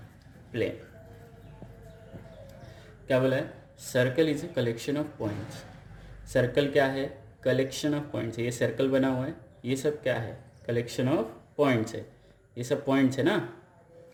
plane। क्या बोला है? Circle is a collection of points. Circle क्या है? Collection of points. ये circle बना हुआ है, ये सब क्या है? कलेक्शन ऑफ पॉइंट्स है। ये सब पॉइंट्स है ना।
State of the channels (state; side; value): identical; both; correlation 1.00